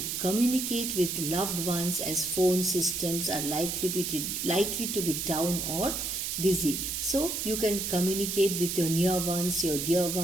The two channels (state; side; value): noise; right; hiss, 2 dB below the sound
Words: communicate with loved ones as phone systems are likely to be down or busy. So you can communicate with your near ones, your dear